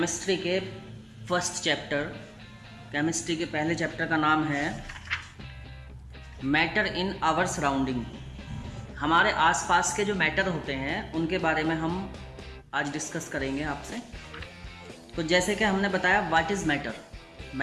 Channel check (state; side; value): identical; both; correlation 1.00